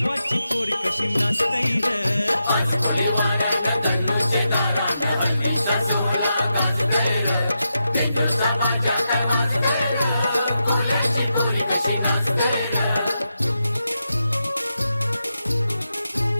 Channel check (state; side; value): inverted; both; correlation -0.86